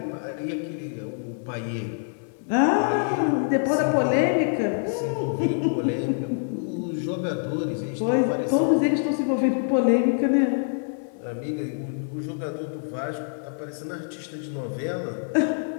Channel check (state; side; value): silent; right; 61 dB below the other